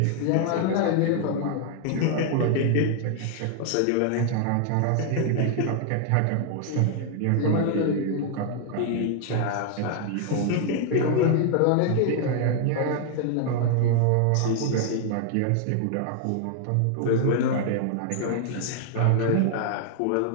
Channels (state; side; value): different; both; correlation 0.00